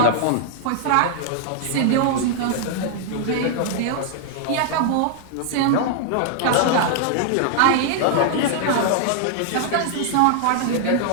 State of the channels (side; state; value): both; different; correlation -0.01